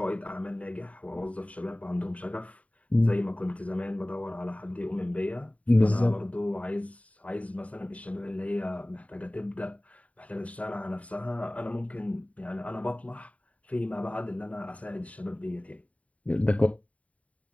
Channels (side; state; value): right; late; 0.067 ms